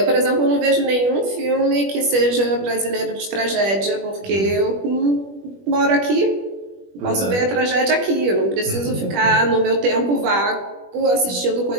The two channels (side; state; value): left; late; 21 ms